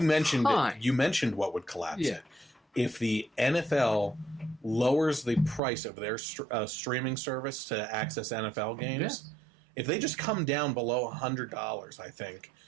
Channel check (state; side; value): drops out; left; at 5.6 s